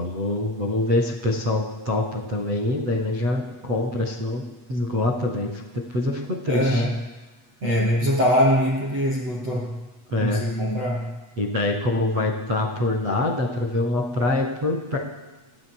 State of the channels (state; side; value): late; left; 8.2 ms